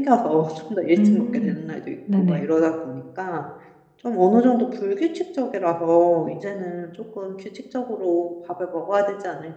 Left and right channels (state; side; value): identical; both; correlation 1.00